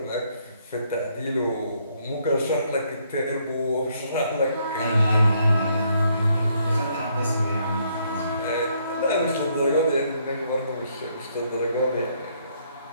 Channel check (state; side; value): inverted; both; correlation -0.71